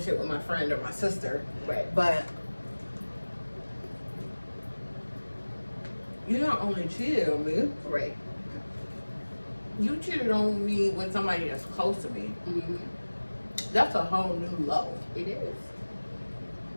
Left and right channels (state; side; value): inverted; both; correlation -1.00